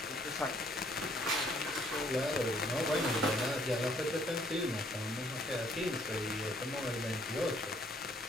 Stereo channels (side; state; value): both; normal; correlation 0.64